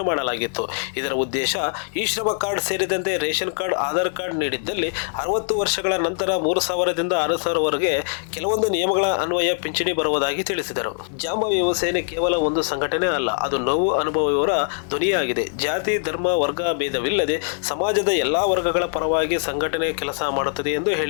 ಮಾಡಲಾಗಿತ್ತು. ಇದರ ಉದ್ದೇಶ ಈ ಶ್ರಮ ಕಾರ್ಡ್ ಸೇರಿದಂತೆ ರೇಷನ್ ಕಾರ್ಡ್, ಆಧಾರ್ ಕಾರ್ಡ್ ನೀಡಿದ್ದಲ್ಲಿ 60 ವರ್ಷಗಳ ನಂತರ 3,000ದಿಂದ 6,000ವರೆಗೆ ಕೆಲವೊಂದು ನಿಯಮಗಳ ಅನ್ವಯ ಪಿಂಚಣಿ ಬರುವುದಾಗಿ ತಿಳಿಸಿದರು. ಜಾಂಬೋ ಯುವ ಸೇನೆ ಕೇವಲ ಒಂದು ಸಂಘಟನೆ ಅಲ್ಲ, ಅದು ನೋವು ಅನುಭವಿಯವರ ಧ್ವನಿಯಾಗಿದೆ. ಜಾತಿ, ಧರ್ಮ, ವರ್ಗ ಭೇದವಿಲ್ಲದೆ ಸಮಾಜದ ಎಲ್ಲಾ ವರ್ಗಗಳ ಪರವಾಗಿ ಸಂಘಟನೆ ಕೆಲಸ ಮಾಡುತ್ತದೆ ಎಂದು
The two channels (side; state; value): right; silent; digital silence